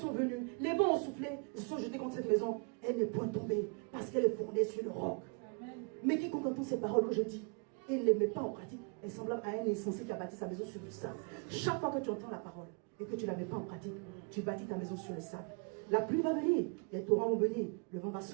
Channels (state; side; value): quieter; left; 36.2 dB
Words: venus, les vents ont soufflé, ils se sont jetés contre cette maison. Elle n'est point tombée parce qu'elle est fondée sur le roc. Amen. Mais quiconque entend ces paroles que je dis et ne les met pas en pratique, est semblable à un insensé qui a bâti sa maison sur le sable. Chaque fois que tu entends la parole et que tu ne la mets pas en pratique, tu bâtis ta maison sur le sable. La pluie va venir, les torrents vont venir, le vent va